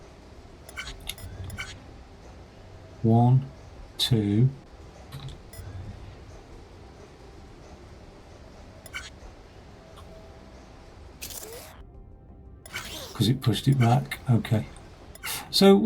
One, 2. Because because it pushed it back. Okay. So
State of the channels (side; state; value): both; identical; correlation 1.00